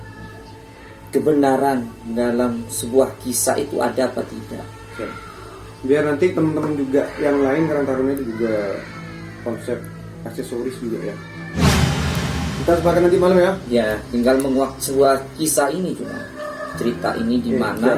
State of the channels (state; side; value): identical; both; correlation 1.00